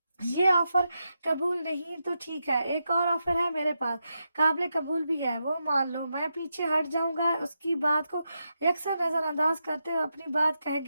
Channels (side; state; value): both; inverted; correlation -0.86